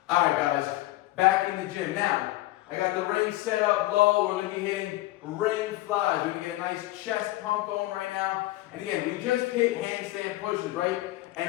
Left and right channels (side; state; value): right; quieter; 17.4 dB